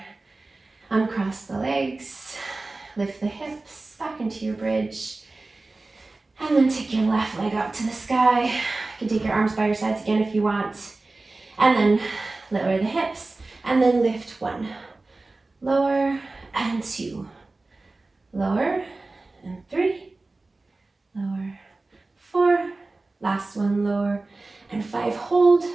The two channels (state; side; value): quieter; left; 3.3 dB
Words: Uncross the legs. Lift the hips back into your bridge. And then take your left leg up to the sky. You can take your arms by your sides again if you want. And then lower the hips. And then lift 1. Lower and 2. Lower and 3. Lower, 4. Last one, lower and 5. Hold.